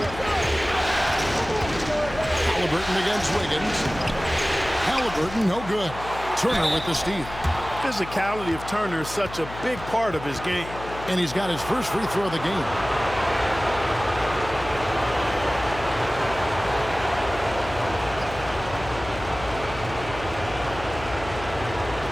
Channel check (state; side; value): noise; left; hum, 12 dB below the sound